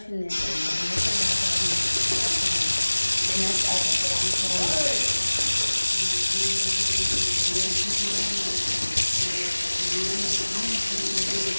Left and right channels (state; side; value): inverted; both; correlation -1.00